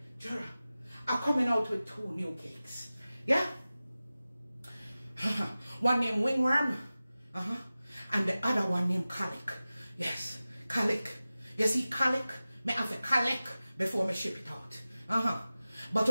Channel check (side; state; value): both; inverted; correlation -0.96